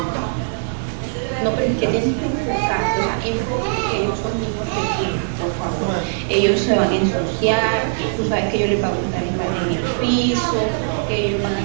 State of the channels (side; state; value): left; silent; digital silence